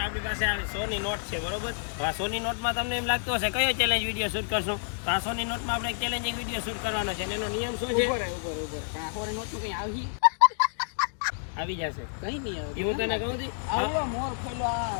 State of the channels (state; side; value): silent; right; digital silence